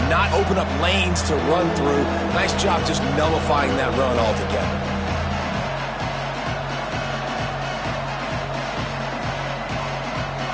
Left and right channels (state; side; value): identical; both; correlation 1.00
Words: not open up lanes to run through. Nice job just nullifying that run altogether.